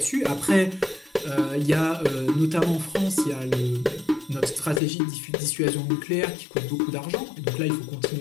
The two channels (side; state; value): right; drops out; at 4.8 s